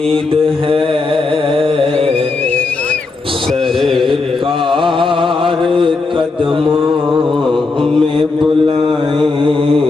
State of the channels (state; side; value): quieter; right; 3.8 dB